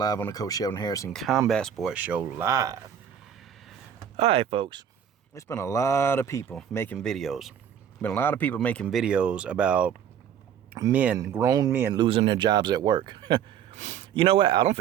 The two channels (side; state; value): left; quieter; 8.8 dB